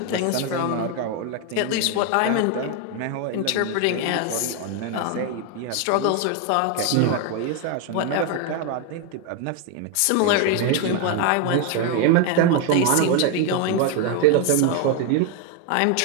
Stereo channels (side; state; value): both; different; correlation 0.01